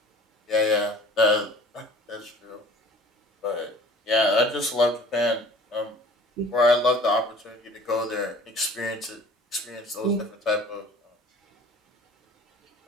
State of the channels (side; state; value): both; normal; correlation 0.47